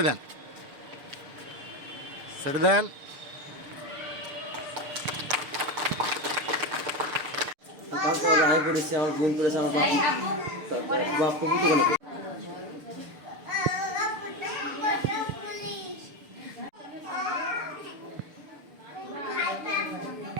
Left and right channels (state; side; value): late; left; 6.8 ms